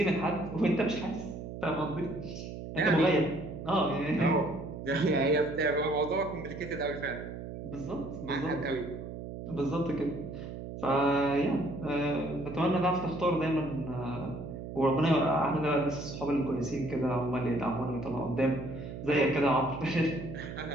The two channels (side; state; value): right; noise; hum, 9 dB below the sound